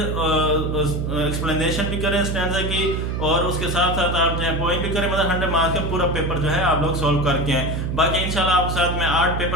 एक्सप्लेनेशन भी करें स्टैंजा की और उसके साथ साथ आप जो है पॉइंट भी करें, मतलब 100 मार्क्स का पूरा पेपर जो है आप लोग सॉल्व करके आए। बाकी इंशाल्लाह आपके साथ में 8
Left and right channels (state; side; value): noise; right; hum, 2 dB below the sound